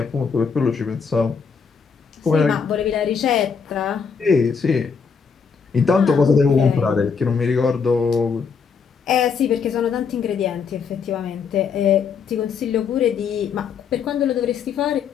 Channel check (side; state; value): right; quieter; 6.0 dB